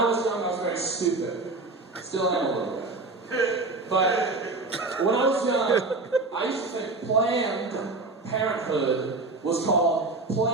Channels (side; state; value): left; quieter; 3.4 dB